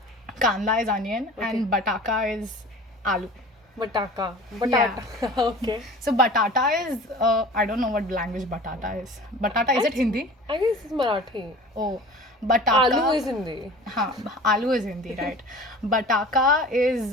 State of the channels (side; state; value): both; normal; correlation 0.41